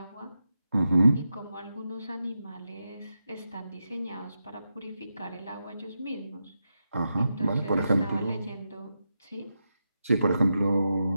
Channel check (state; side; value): inverted; both; correlation -0.88